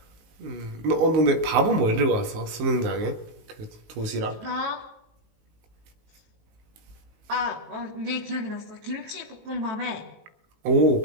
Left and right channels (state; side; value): late; left; 19 ms